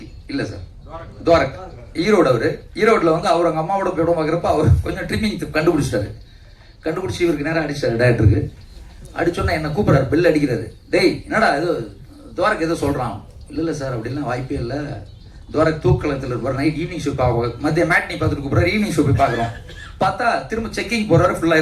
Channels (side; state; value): both; identical; correlation 1.00